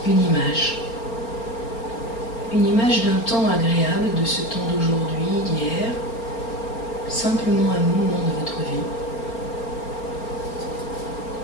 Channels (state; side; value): late; right; 4.4 ms